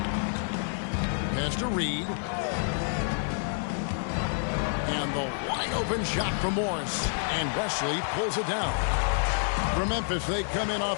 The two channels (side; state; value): right; silent; 59 dB below the other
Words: Pass to Reed. And the wide open shot from Morris. And Wesley pulls it down. For Memphis, they come in